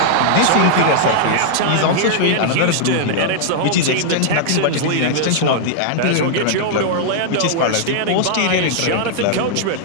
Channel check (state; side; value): different; both; correlation -0.01